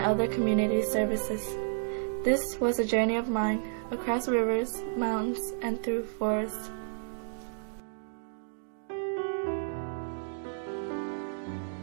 other community services. This was a journey of mine, across rivers, mountains, and through forests.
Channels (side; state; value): left; silent; digital silence